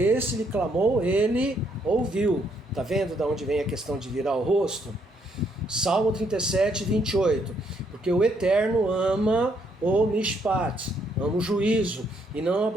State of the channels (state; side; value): normal; both; correlation 0.72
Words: lhe clamou, ele ouviu. Está vendo de onde vem a questão de virar o rosto? Salmo 37:28. Porque o Eterno ama o mishpat, ama o juízo, e não